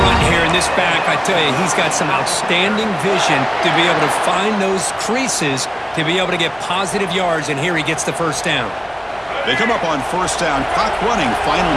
here in this back. I tell you, he's got some outstanding vision to be able to find those creases to be able to get positive yards, and here he gets the first down. They come up on first down, clock running, final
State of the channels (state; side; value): identical; both; correlation 1.00